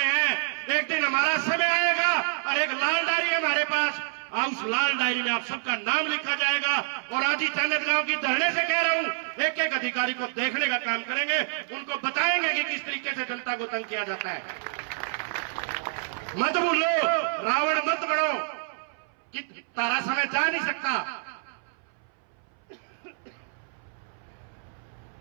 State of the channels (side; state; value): left; silent; 59 dB below the other